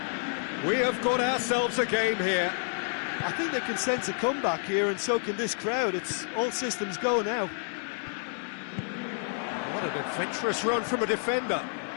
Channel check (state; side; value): silent; right; digital silence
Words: We have got ourselves a game here. I think they can sense a comeback here, and so can this crowd. It's all systems go now. What an adventurous run from a defender.